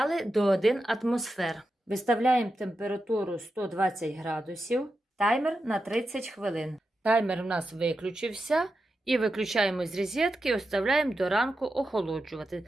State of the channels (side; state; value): both; normal; correlation 0.89